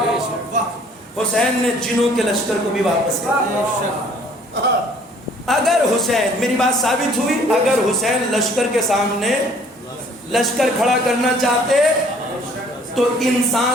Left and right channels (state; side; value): normal; both; correlation 0.57